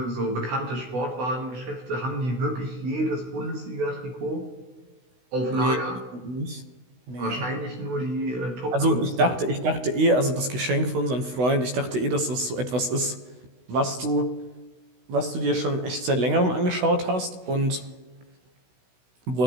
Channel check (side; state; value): left; late; 16 ms